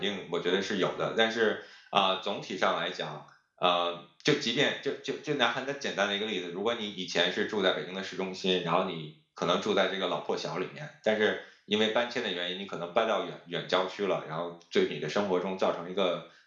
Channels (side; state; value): both; identical; correlation 1.00